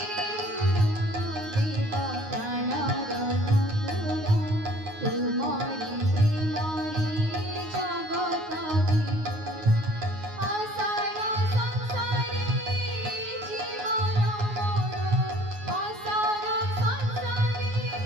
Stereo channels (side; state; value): left; late; 9.5 ms